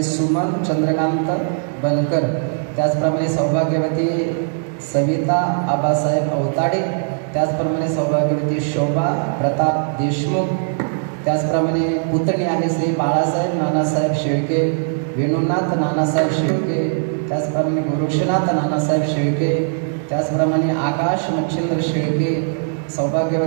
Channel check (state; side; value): silent; left; digital silence